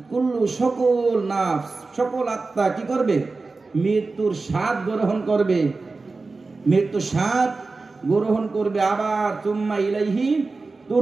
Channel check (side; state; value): left; quieter; 3.8 dB